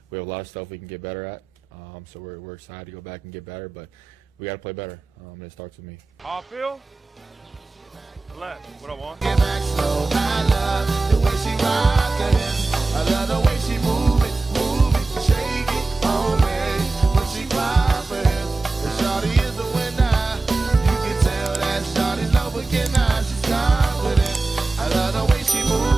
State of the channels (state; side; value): quieter; left; 3.5 dB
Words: we have a lot of stuff we can get better at. So we're excited to go back and get better, but we got to play better, and it starts with me. Howell, left, what I want. Get back slow, I love the way she rockin' it. I love the way she move it, shake it on me. When she clap it, the shawty is the winner. You can tell that shawty's no beginner. She's confident. I love the way she